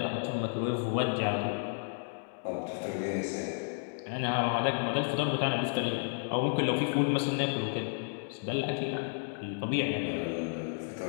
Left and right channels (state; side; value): silent; right; digital silence